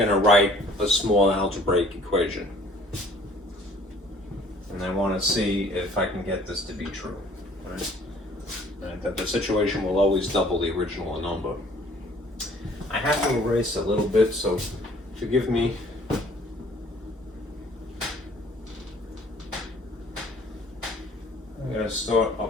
to write a small algebraic equation. And I want to see if I can get this to be true. Right? Right, that the situation will always double the original number. I have to erase a little bit, so forgive me. I'm going to start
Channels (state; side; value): normal; both; correlation 0.56